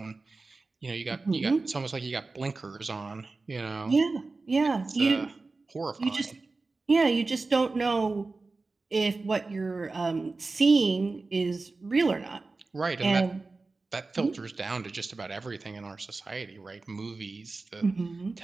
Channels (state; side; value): quieter; left; 3.7 dB